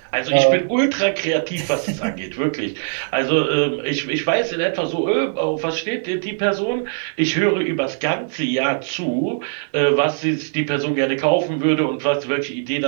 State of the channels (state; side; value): silent; left; digital silence